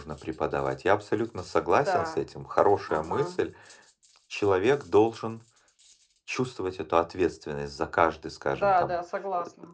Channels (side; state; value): both; identical; correlation 1.00